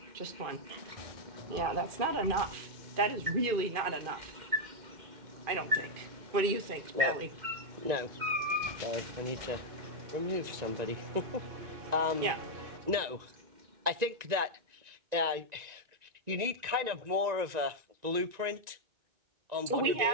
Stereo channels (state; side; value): late; left; 1.9 ms